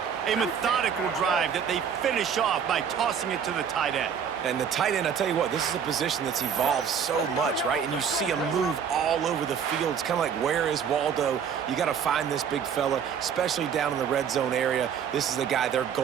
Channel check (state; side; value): quieter; left; 7.5 dB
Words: A methodical drive that they finish off by tossing it to the tight end. And the tight end, I tell you what, this is a position that's evolved so much, right? And you see him move all over the field. It's kind of like, where is Waldo? You got to find this big fella, especially down in the red zone area. This is the guy they're